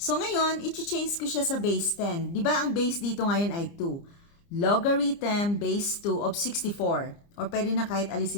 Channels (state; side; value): late; right; 29 ms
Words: ngayon, i-change ko siya sa base 10. Di ba ang base dito ngayon ay 2? Logarithm base 2 of 64. Or pwede na kahit